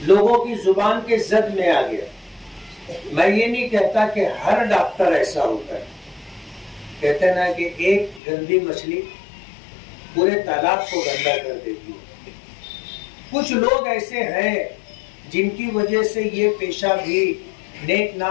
लोगों की जुबान के जद में आ गया। मैं ये नहीं कहता कि हर डॉक्टर ऐसा होता है। कहते हैं ना कि एक गंदी मछली पूरे तालाब को गंदा कर देती है। कुछ लोग ऐसे हैं जिनकी वजह से ये पेशा भी नेक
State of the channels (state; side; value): drops out; right; at 8.2 s